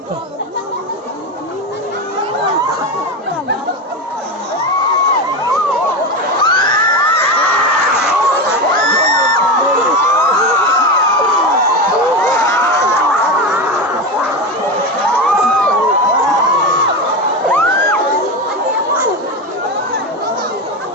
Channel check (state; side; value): normal; both; correlation 0.19